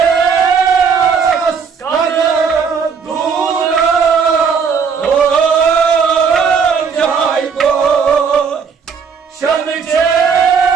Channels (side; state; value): left; quieter; 6.1 dB